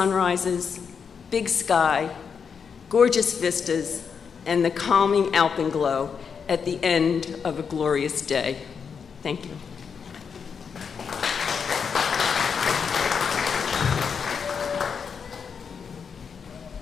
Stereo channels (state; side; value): quieter; right; 6.4 dB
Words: big sky, gorgeous vistas, and the calming alpenglow at the end of a glorious day. Thank you.